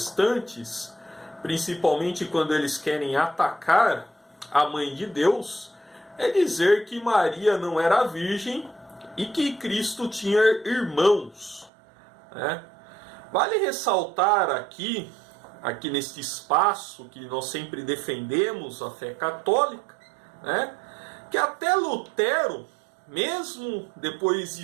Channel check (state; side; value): drops out; left; at 11.7 s